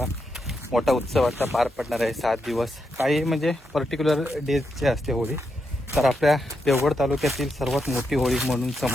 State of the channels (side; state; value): both; normal; correlation 0.84